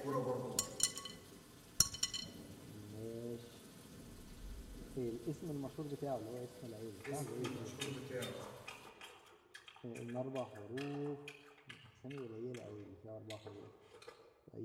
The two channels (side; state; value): both; identical; correlation 1.00